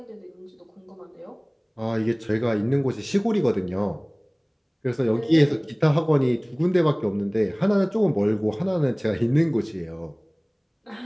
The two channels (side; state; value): both; identical; correlation 1.00